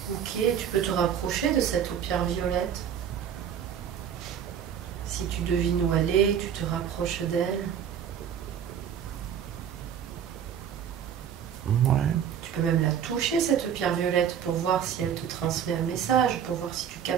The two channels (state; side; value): quieter; left; 8.6 dB